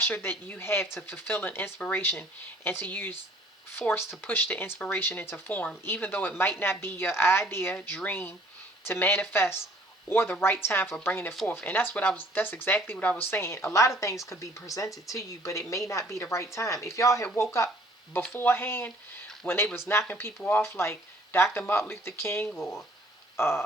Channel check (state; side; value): normal; both; correlation 0.56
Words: that you have to fulfill an inspiration and to use forced to push the inspiration into form, even though it might not be your idea, dream to manifest, or the right time for bringing it forth. And that's exactly what I was saying. A lot of things could be presented to you, but it may not be the right time. If y'all had woke up beforehand when they was knocking people off, like Dr. Martin Luther King, or